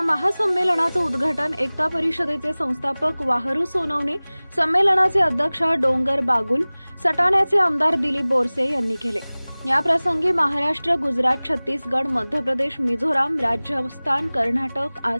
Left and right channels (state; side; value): inverted; both; correlation -1.00